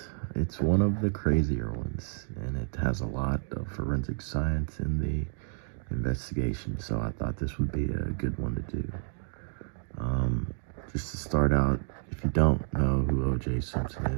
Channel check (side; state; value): left; silent; digital silence